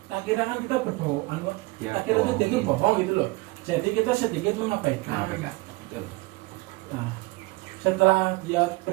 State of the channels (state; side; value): quieter; left; 22.8 dB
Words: Tak kira kan kita berbohong, tak kira itu sedikit bohong gitu loh. Jadi kita sedikit mengabaikan. Nah, setelah dia